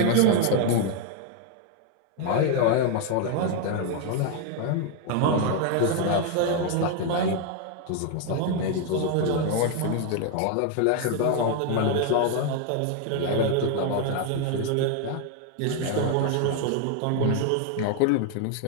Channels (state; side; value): different; both; correlation 0.01